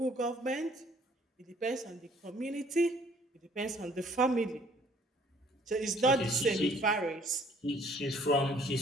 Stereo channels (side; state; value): both; normal; correlation 0.59